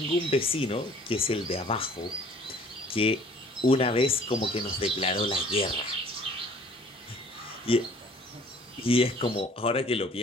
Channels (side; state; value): both; normal; correlation 0.53